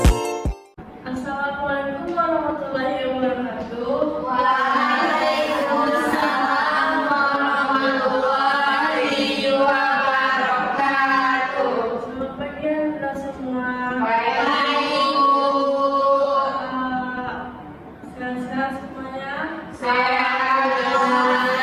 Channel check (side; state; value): both; identical; correlation 1.00